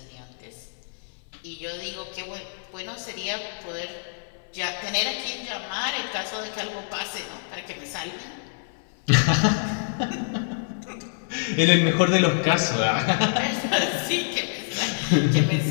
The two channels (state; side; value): silent; right; 61 dB below the other